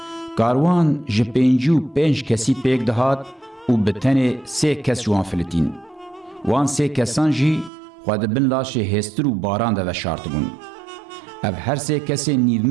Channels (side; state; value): left; drops out; at 7.7 s